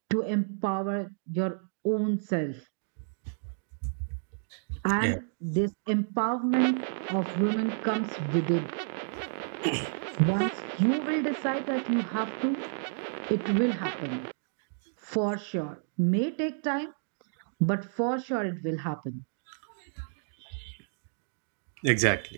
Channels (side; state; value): left; silent; digital silence